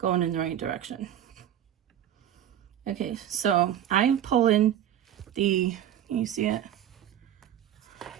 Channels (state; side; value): quieter; left; 10.7 dB